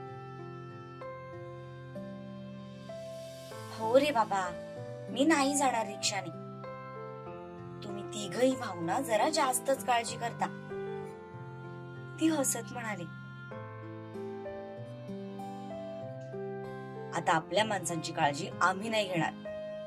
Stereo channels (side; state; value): both; identical; correlation 1.00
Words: हो रे बाबा, मी नाही जाणार रिक्षाने. तुम्ही तिघही भावना जरा जास्तच काळजी करता, ती हसत म्हणाली. आता आपल्या माणसांची काळजी आम्ही नाही घेणार